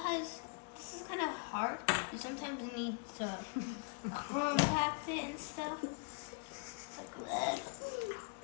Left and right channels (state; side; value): quieter; right; 37.1 dB